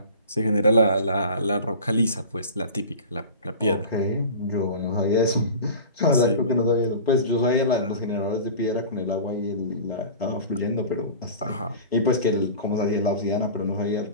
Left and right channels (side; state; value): both; inverted; correlation -0.37